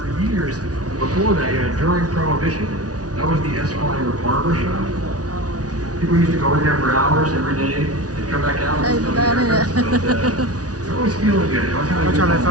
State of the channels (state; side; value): late; left; 0.68 ms